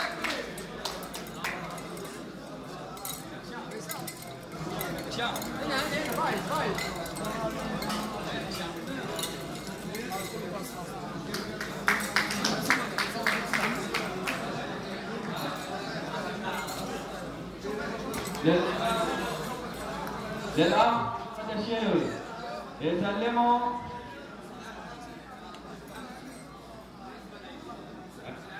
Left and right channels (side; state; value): both; identical; correlation 1.00